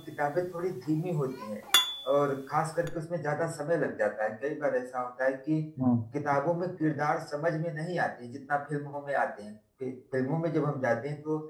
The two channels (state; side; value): identical; both; correlation 1.00